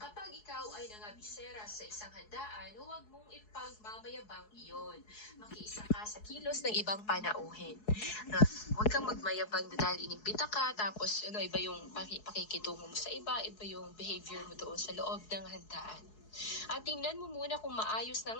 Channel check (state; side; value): late; right; 4.7 ms